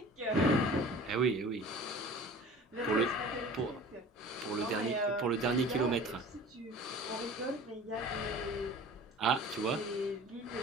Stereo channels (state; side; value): normal; both; correlation 0.42